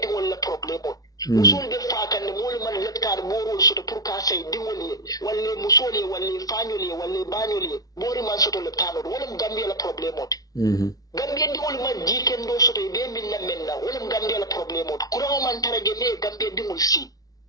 wala problem o musole de fa kan mole man letkar boro so to pour ka say di wala musole wala fanyole wala banyole bori man so to le tano wala mu Gambia la problem o Gambia di wala man jiken do so to be min la menna wala mu Gambia la problem o kuro man tarage me Gambia di mul si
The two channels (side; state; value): right; late; 0.18 ms